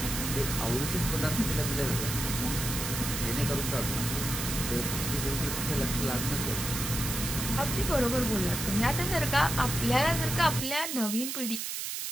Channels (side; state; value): right; noise; hiss, 4 dB below the sound